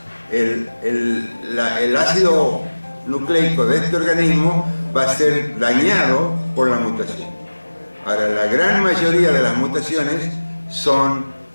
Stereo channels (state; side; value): inverted; both; correlation -1.00